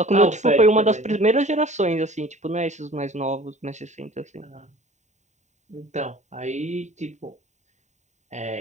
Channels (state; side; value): late; left; 0.34 ms